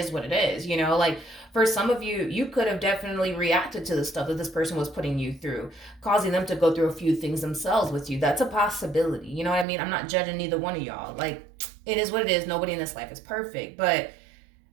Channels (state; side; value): drops out; left; at 9.7 s